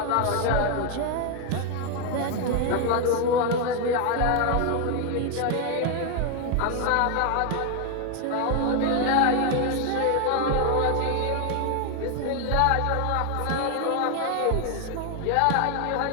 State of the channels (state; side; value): different; both; correlation 0.01